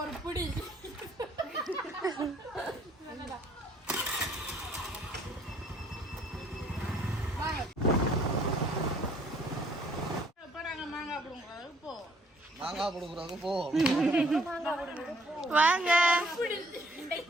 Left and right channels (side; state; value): both; normal; correlation 0.61